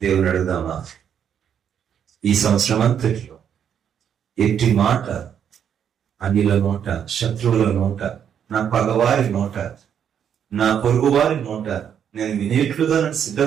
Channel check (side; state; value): left; quieter; 8.5 dB